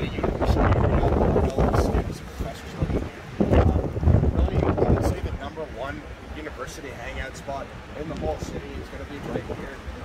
university area, all the students and professors living here. Really, I would say the #1 university hangout spot in the whole city is going to be right here,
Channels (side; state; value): both; identical; correlation 1.00